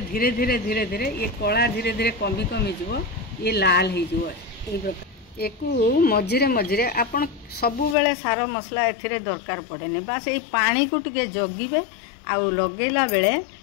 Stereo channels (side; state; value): right; drops out; at 8.0 s